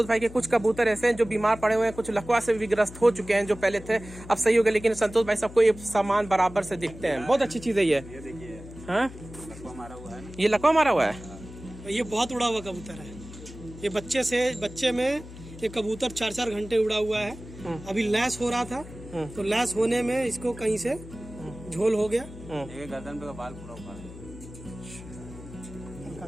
भाई के कुछ कबूतर ऐसे हैं जो बीमार पड़े हुए हैं, कुछ लकवा से भी ग्रस्त हो चुके हैं, जो पहले थे अब सही हो गए, लेकिन संतोष भाई सबको ये सामान बराबर से दिखते हैं। बहुत अच्छी चीज है ये। हाँ, ये लकवा मारा हुआ है, ये बहुत उड़ा हुआ कबूतर है। ये बच्चे में ये कबूतर 4-4 घंटे उड़ा हुआ है। अभी लैस हो रहा था, तो लैस होने में इसको कहीं से झोल हो गया। एक गर्दन पे का बाल पूरा उखाड़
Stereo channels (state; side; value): noise; left; hum, 15 dB below the sound